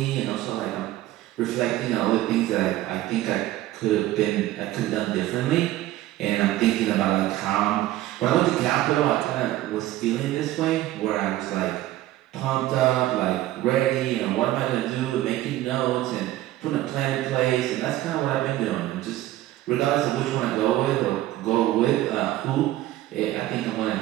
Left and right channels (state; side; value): quieter; left; 15.1 dB